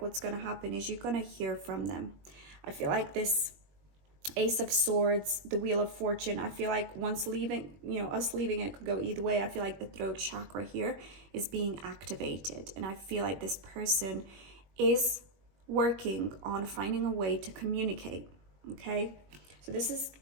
going to happen is you're going to hear from them. I feel like this Ace of Swords, the Wheel of Fortune, I feel like once leaving, us leaving, it could go either way. I feel like the throat chakra here is being activated, and I feel like this person is working on finding a way to communicate. Okay, so this is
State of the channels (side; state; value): left; late; 21 ms